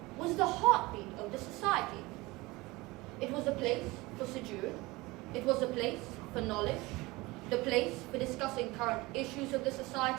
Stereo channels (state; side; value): quieter; left; 21.9 dB